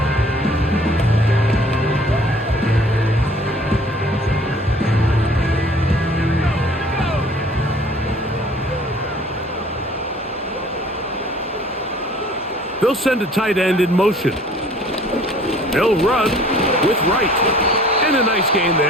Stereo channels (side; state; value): both; normal; correlation 0.52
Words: They'll send a tight end in motion. They'll run with Wright. And a nice gain